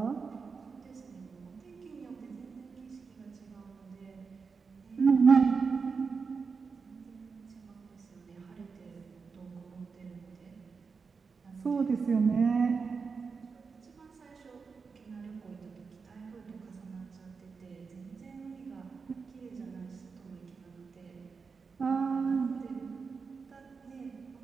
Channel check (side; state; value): left; quieter; 5.1 dB